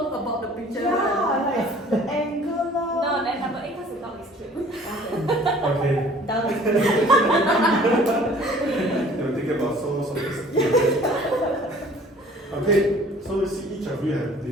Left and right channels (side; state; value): both; normal; correlation 0.52